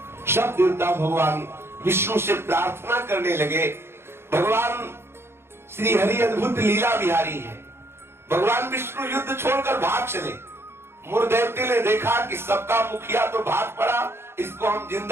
सब देवता भगवान विष्णु से प्रार्थना करने लगे। भगवान श्री हरि अद्भुत लीला बिहारी है। भगवान विष्णु युद्ध छोड़कर भाग चले। मुर दैत्य ने देखा कि सबका मुखिया तो भाग पड़ा, इसको हम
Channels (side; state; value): left; late; 0.12 ms